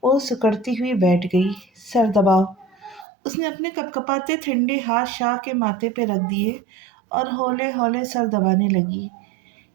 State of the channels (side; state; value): left; drops out; at 3.1 s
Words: وہ سکڑتی ہوئی بیٹھ گئی۔ سر دباؤ۔ اس نے اپنے کپ کپاتے ٹھنڈے ہاتھ شاہ کے ماتھے پہ رکھ دیے اور ہولے ہولے سر دبانے لگی۔